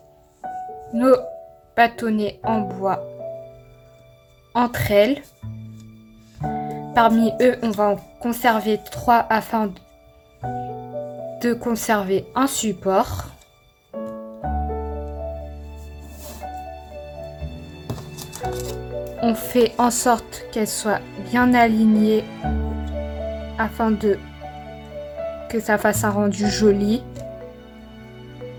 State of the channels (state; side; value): identical; both; correlation 1.00